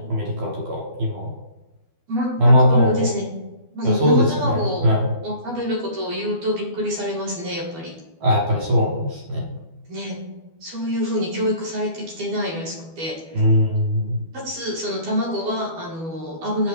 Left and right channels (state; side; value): late; left; 12 ms